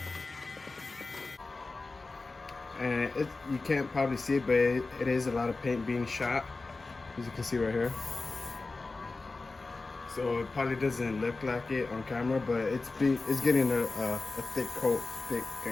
And you can't probably see it, but it is a lot of paint being shot, as you can see right here. So it probably doesn't look like it on camera, but it's getting a thick coat, thick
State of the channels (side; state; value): right; quieter; 3.6 dB